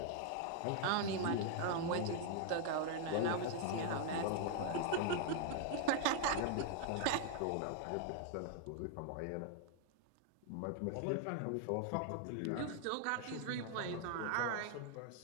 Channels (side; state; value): both; different; correlation 0.00